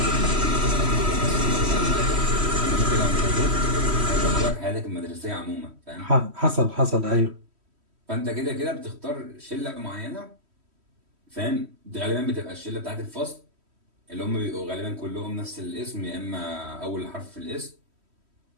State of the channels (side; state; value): left; late; 3.1 ms